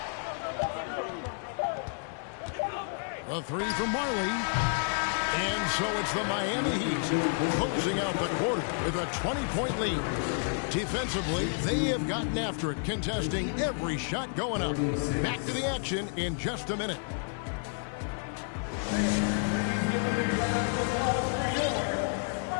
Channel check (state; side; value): silent; right; 58 dB below the other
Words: The three from Marley. And so it's the Miami Heat closing out the quarter with a 20-point lead. Defensively, they have gotten after it, contesting every shot going up. Back to the action in just a minute.